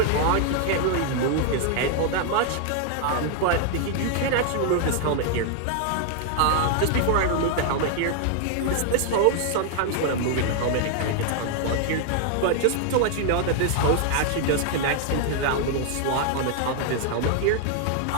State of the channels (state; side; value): different; both; correlation 0.00